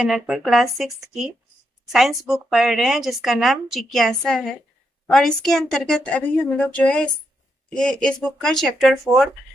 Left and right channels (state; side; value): normal; both; correlation 0.81